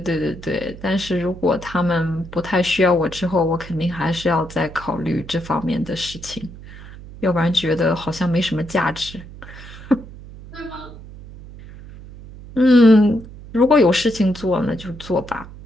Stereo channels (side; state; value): right; noise; hum, 16 dB below the sound